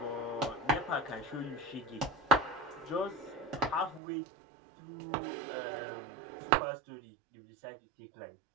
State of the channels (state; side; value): drops out; left; at 4.0 s